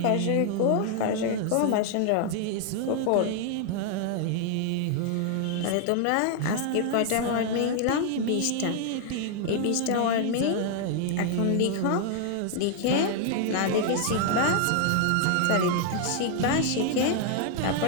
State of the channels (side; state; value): both; different; correlation 0.00